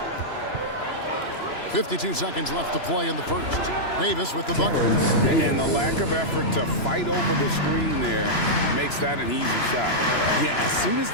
52 seconds left to play in the first. Davis with the bucket. And the lack of effort to fight over the screen there makes that an easy shot. Yeah, as soon as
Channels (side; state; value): right; late; 3.0 ms